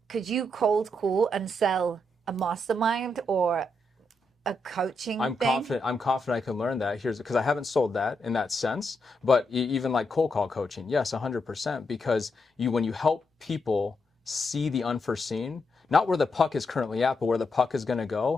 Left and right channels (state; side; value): normal; both; correlation 0.82